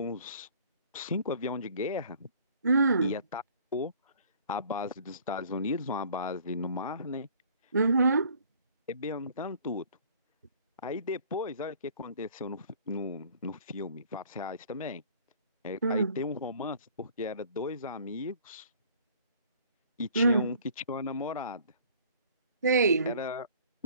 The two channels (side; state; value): both; inverted; correlation -0.53